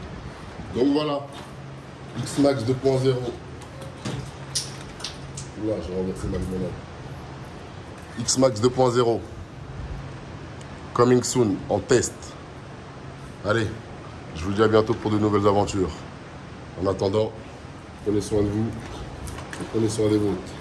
Donc voilà, X-Max 2.0. Là, j'ai renversé ma limonade. X-Max 2.0. Coming soon, en test. Allez, je vous dis à bientôt pour de nouvelles aventures. En attendant, prenez soin de vous, prenez soin des vôtres.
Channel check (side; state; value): both; identical; correlation 1.00